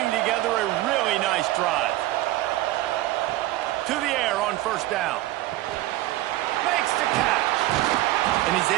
together a really nice drive. To the air on first down. Makes the catch. And he's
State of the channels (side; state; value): left; quieter; 16.4 dB